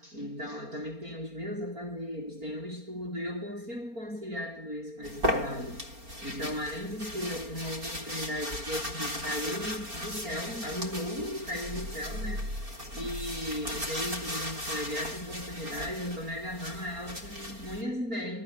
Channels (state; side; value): late; left; 4.3 ms